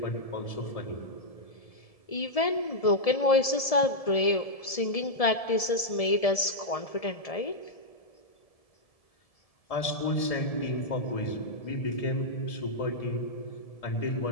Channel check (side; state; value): right; late; 1.7 ms